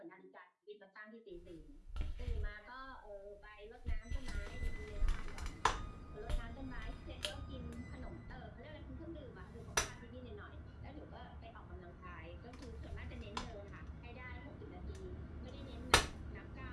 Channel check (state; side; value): identical; both; correlation 1.00